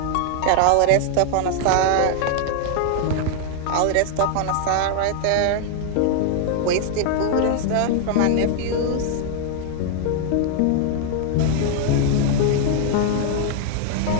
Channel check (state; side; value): different; both; correlation 0.00